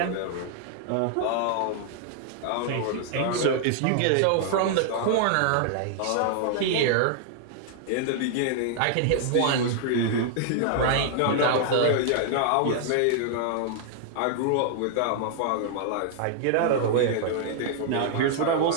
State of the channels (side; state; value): both; different; correlation 0.00